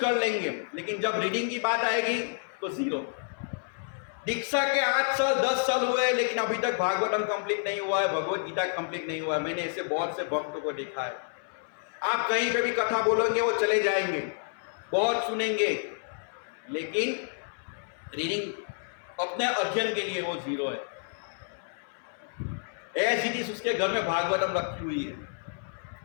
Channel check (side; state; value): right; silent; 58 dB below the other